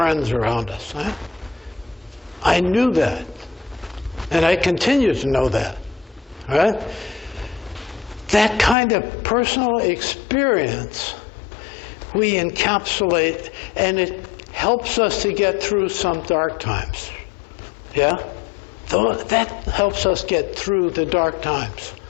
around us. Huh? I knew that. And I continue to know that. Right? That kind of personal experience we encapsulate, and it helps us to get through some dark times. Yeah? That helps us get through the dark times.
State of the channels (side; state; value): right; drops out; at 8.8 s